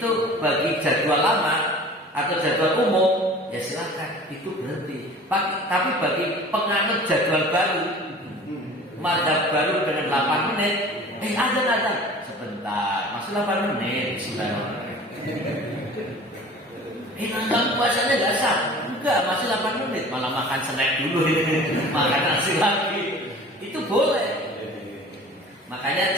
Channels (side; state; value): both; normal; correlation 0.43